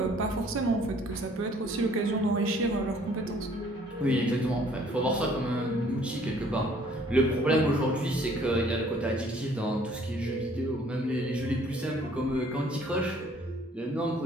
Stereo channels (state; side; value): normal; both; correlation 0.58